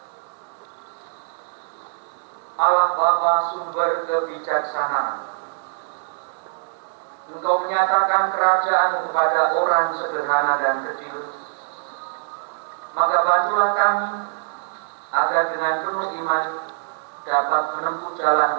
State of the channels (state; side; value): silent; left; digital silence